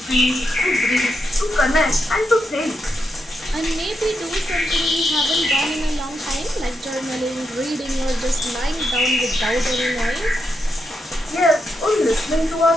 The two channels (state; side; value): normal; both; correlation 0.82